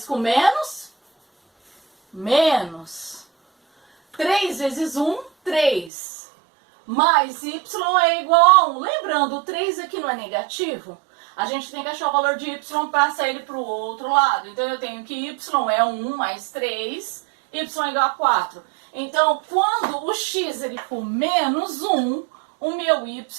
com menos, menos. 3 vezes 1, 3. Mais y é igual a 1. Lembrando, o 3 aqui não é negativo? A gente tem que achar o valor de y para passar ele para o outro lado. Então, eu tenho que y é 1 mais 3, y é igual a 4. Então, quando o x ele for menos 1, o meu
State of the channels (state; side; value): drops out; left; at 5.9 s